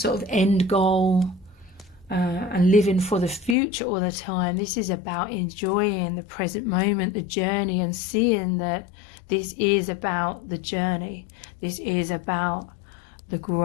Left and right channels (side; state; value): right; drops out; at 3.6 s